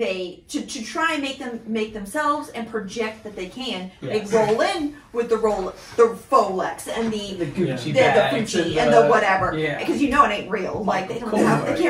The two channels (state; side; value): identical; both; correlation 1.00